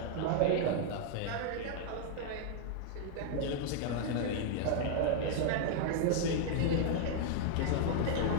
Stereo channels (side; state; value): both; different; correlation 0.00